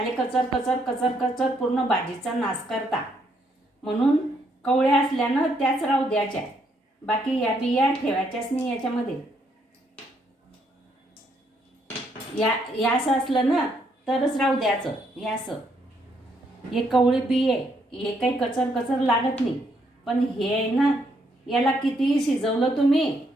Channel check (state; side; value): normal; both; correlation 0.73